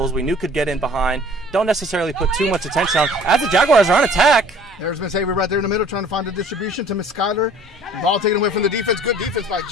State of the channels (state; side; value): normal; both; correlation 0.51